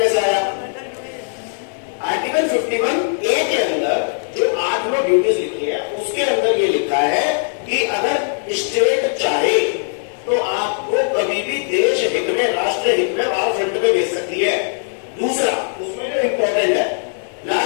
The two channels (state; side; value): silent; right; digital silence